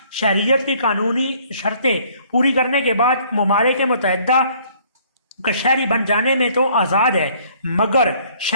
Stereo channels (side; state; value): both; inverted; correlation -0.59